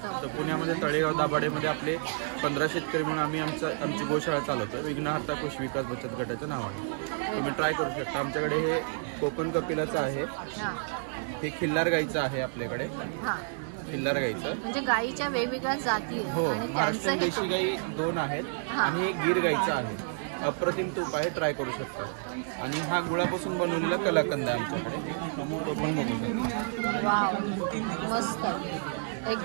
तर पुण्यामध्ये तळेगाव दाभाडेमध्ये आपले 15 शेतकरी म्हणून आम्ही आमची गोशाळा चालवतो. विघ्नहर्ता कृषी विकास बचत गटाच्या नावाने तुम्ही ट्राय करू शकता. आमच्याकडे हे कोकण कपिलाचं आहे, हे खिल्लार गाईचं आहे आपल्याकडे, खिल्लार गाईचं म्हणजे गाईच्या वेगवेगळ्या जाती हो. महाराष्ट्रीयन देशी गाई 2 आहेत आणि हे गीर गाईचं आहे. अप्रतिम तूप आहे, ट्राय करू शकता. आणि हा गुळापासून बनवलेला कलाकंद आहे आमच्याकडे, तो पण बघू शकता. वाव मस्त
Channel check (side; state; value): left; silent; digital silence